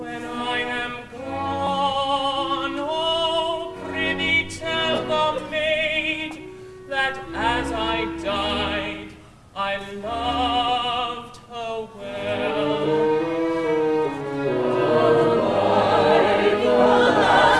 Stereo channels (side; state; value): both; identical; correlation 1.00